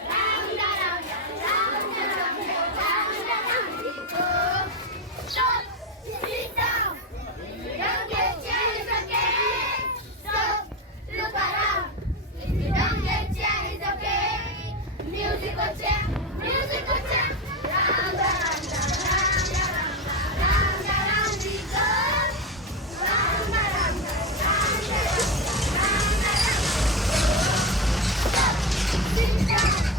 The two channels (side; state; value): both; normal; correlation 0.16